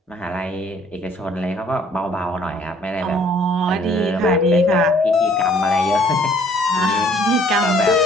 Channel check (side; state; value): both; normal; correlation 0.59